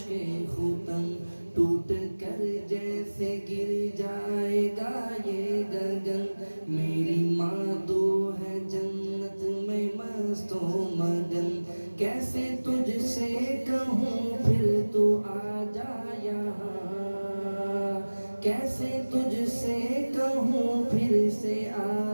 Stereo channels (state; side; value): inverted; both; correlation -1.00